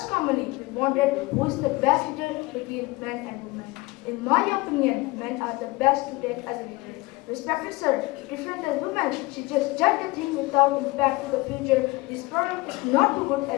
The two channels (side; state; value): right; quieter; 22.2 dB